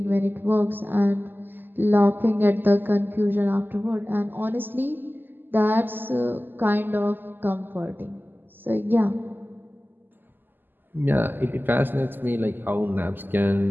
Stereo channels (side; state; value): left; late; 0.092 ms